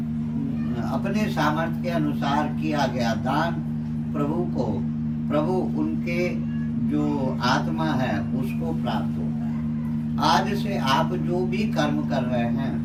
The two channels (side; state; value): both; identical; correlation 1.00